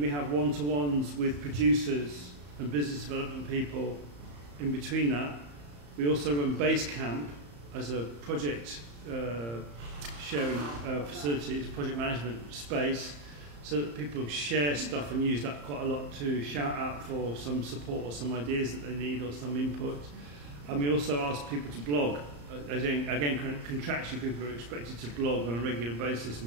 have one-to-ones with producers and business development people in between that. We also run Base Camp as a project sharing facilities, project management space, so that people share stuff and use that quite a lot to shout out for some support or some ideas that they need or some input. And we also ask people to blog. Again, contractually, people are expected to blog on a regular basis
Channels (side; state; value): left; late; 34 ms